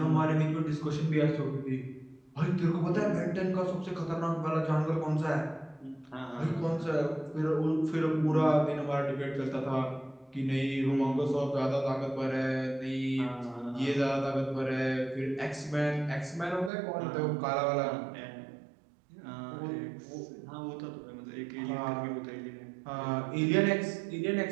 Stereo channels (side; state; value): left; drops out; at 16.7 s